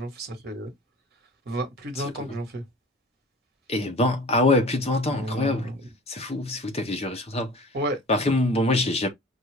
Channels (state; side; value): normal; both; correlation 0.42